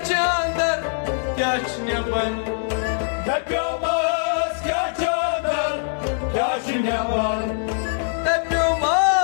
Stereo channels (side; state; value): right; silent; digital silence